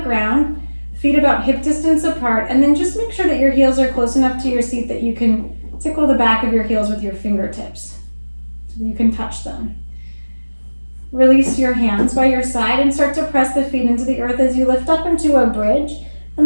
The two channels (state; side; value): inverted; both; correlation -1.00